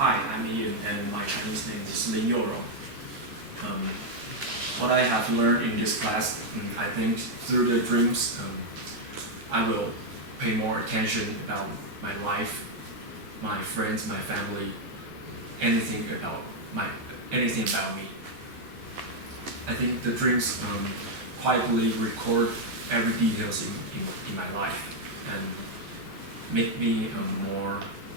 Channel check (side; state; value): left; late; 13 ms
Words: I'm Ian, and my Chinese name is Lin Yorong. What I have learned in this class, I think through the dreams, I will pay more attention about my life, my friends, my family, anything about me. I think the dreams quietly record every details in my life and make me more